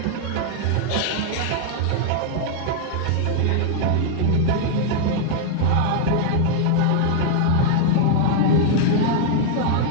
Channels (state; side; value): different; both; correlation -0.01